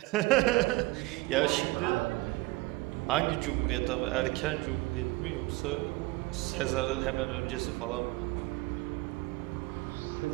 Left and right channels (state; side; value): quieter; left; 21.7 dB